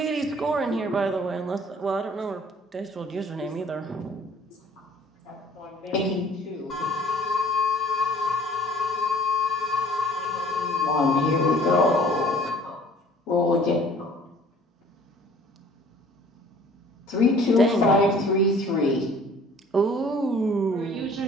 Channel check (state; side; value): normal; both; correlation 0.52